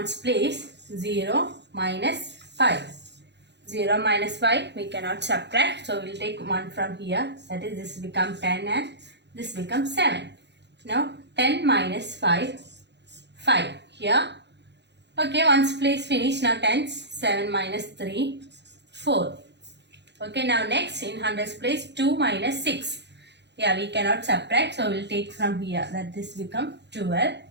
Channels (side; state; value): left; late; 0.50 ms